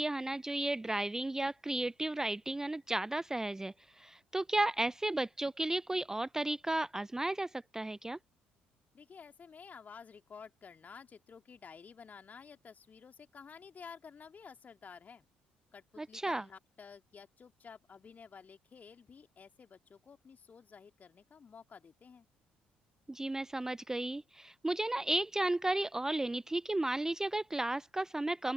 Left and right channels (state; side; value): normal; both; correlation 0.96